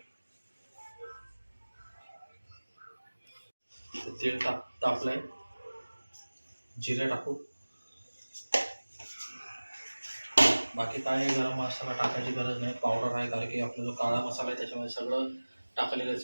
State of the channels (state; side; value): inverted; both; correlation -1.00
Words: तेल तापलंय, जिरे टाकू. बाकी काय गरम मसाला टाकायची गरज नाही, पावडर आहे, कारण की आपला जो काळा मसाला आहे त्याच्यामध्ये सगळं